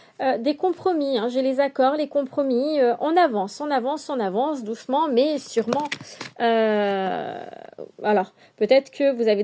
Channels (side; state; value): both; identical; correlation 1.00